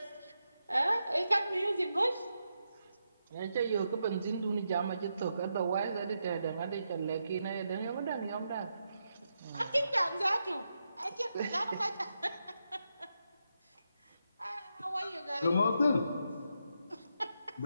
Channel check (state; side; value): inverted; both; correlation -0.84